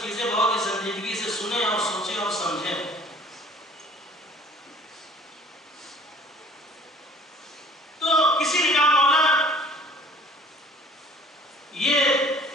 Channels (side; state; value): both; normal; correlation 0.51